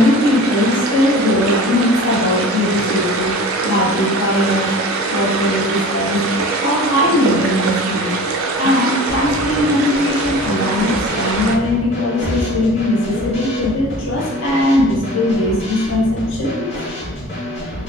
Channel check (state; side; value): normal; both; correlation 0.41